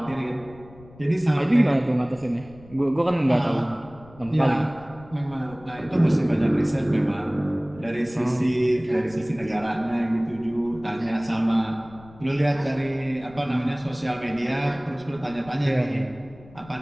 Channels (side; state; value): left; noise; rumble, 21 dB below the sound